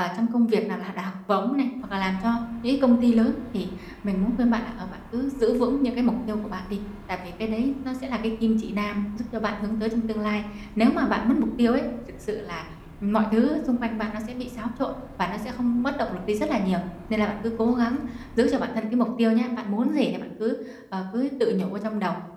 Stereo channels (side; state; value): both; identical; correlation 1.00